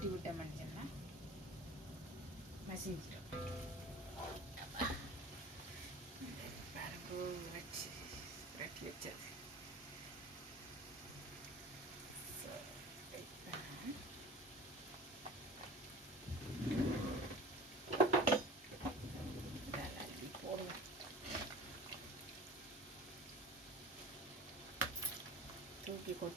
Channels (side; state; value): both; normal; correlation 0.39